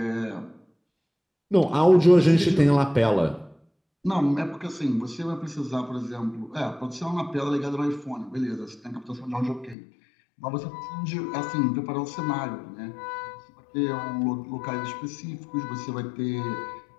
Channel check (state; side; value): drops out; right; at 9.8 s